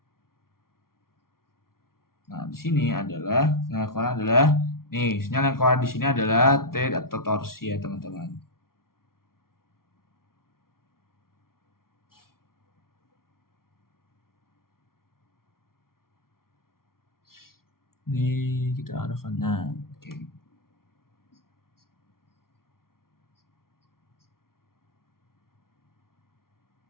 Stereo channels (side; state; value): right; late; 0.93 ms